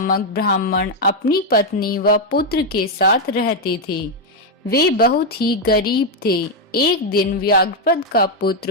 ब्राह्मण अपनी पत्नी व पुत्र के साथ रहते थे। वे बहुत ही गरीब थे। एक दिन व्याघ्रपद का पुत्र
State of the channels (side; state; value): both; normal; correlation 0.02